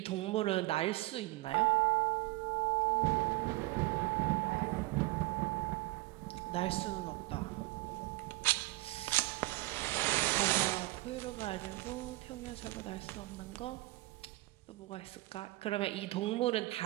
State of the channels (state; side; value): quieter; left; 20.8 dB